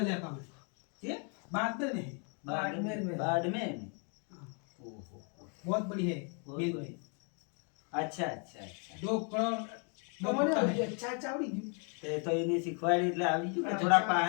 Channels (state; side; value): quieter; right; 38.5 dB